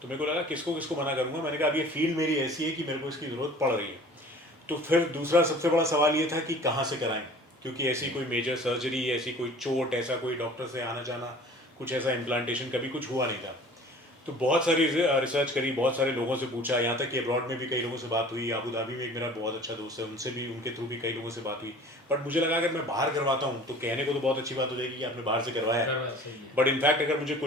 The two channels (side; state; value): both; normal; correlation 0.46